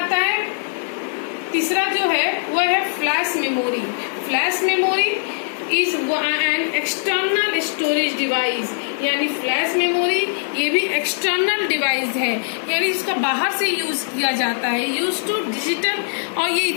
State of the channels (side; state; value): right; silent; digital silence